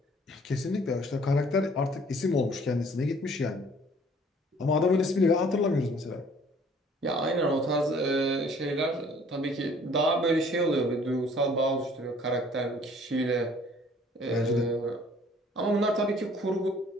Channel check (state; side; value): normal; both; correlation 0.56